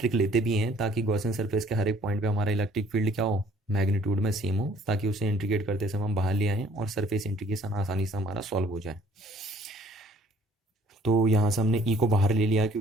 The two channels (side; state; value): both; normal; correlation 0.58